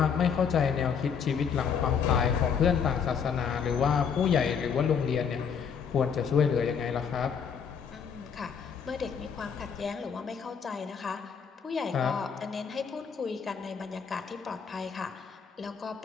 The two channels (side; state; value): right; quieter; 6.8 dB